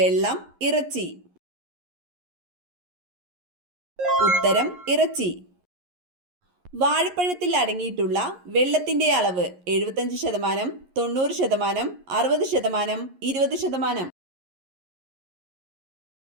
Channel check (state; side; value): late; left; 11 ms